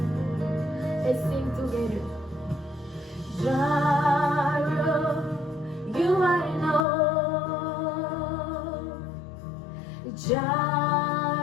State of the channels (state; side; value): drops out; right; at 6.9 s